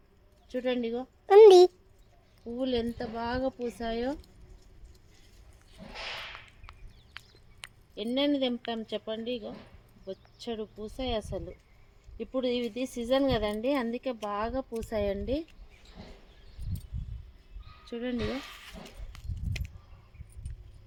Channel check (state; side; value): identical; both; correlation 1.00